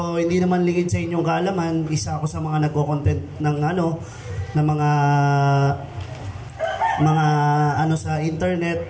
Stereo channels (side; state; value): both; identical; correlation 1.00